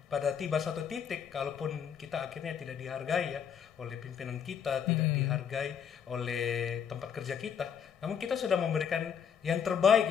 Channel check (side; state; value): right; quieter; 7.7 dB